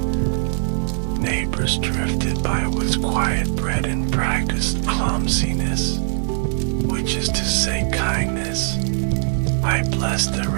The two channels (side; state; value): left; silent; 56 dB below the other